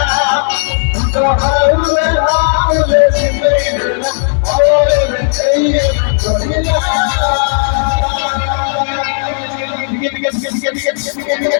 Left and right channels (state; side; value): silent; right; digital silence